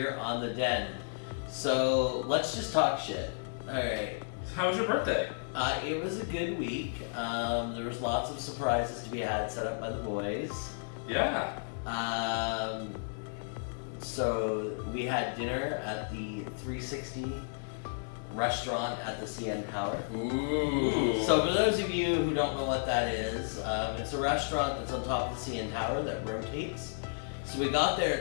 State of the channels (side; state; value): right; silent; digital silence